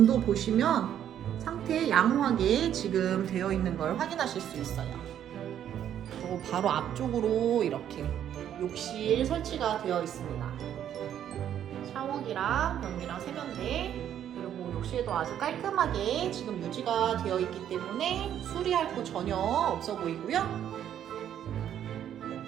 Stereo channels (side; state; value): left; quieter; 10.2 dB